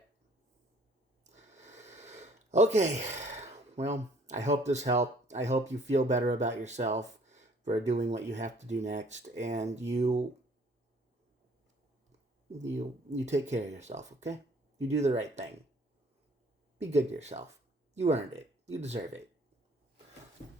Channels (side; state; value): both; normal; correlation 0.58